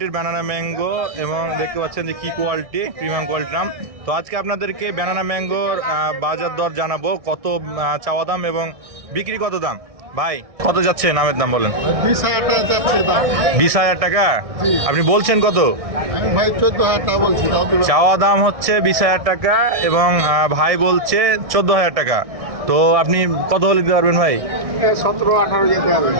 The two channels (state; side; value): late; left; 1.6 ms